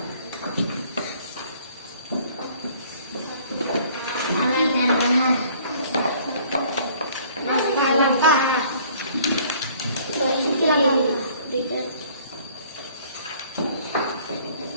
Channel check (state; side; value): inverted; both; correlation -0.56